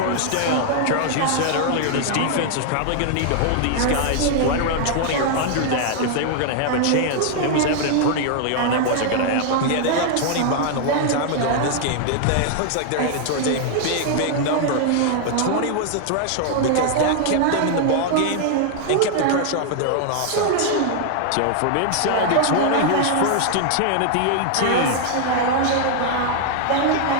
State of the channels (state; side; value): different; both; correlation 0.00